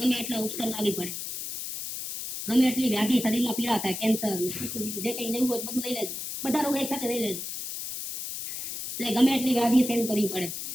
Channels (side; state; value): left; noise; hiss, 6 dB below the sound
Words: એટલા ઉપસર લાવી પડે, ગમે એટલી વ્યાધિ શરીરમાં પીડા થાય, કેન્સર જે કઈ લેવું હોય બધું લઈ લેજો. બધા રોગ એક સાથે લઈ લેજો. એટલે ગમે એટલી વ્યાધિ સહન કરવી પડે,